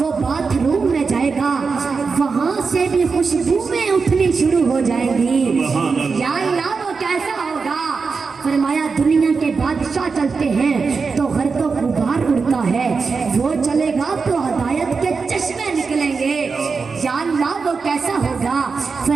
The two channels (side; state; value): left; quieter; 4.9 dB